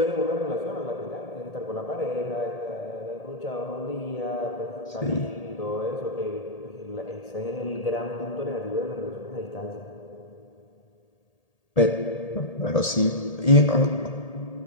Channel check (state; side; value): late; right; 1.8 ms